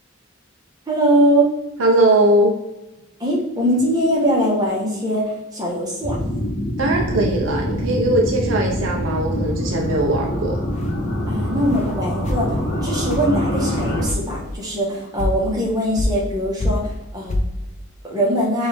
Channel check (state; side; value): normal; both; correlation 0.33